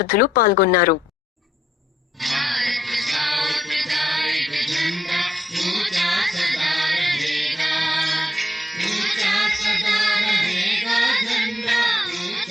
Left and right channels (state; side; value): normal; both; correlation 0.76